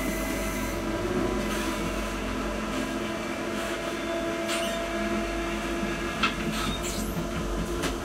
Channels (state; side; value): identical; both; correlation 1.00